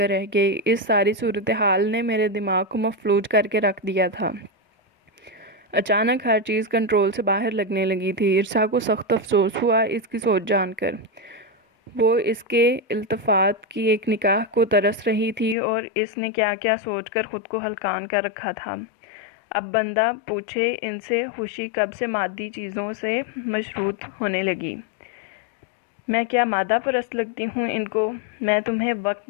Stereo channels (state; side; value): drops out; right; at 15.6 s